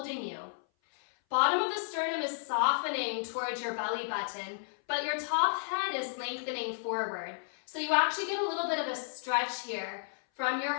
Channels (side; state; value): right; silent; 56 dB below the other